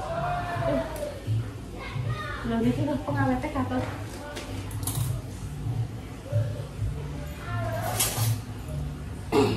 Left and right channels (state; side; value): identical; both; correlation 1.00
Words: Lha iki lho pengawete katut.